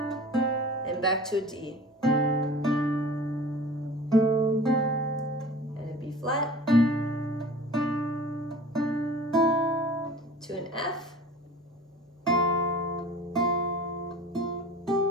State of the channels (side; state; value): both; normal; correlation 0.42